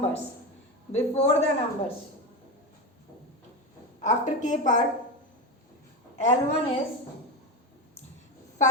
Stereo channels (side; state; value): both; normal; correlation 0.18